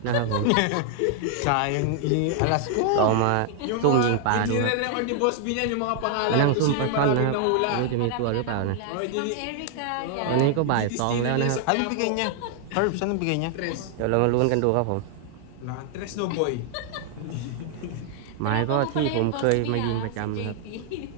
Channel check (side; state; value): both; different; correlation 0.00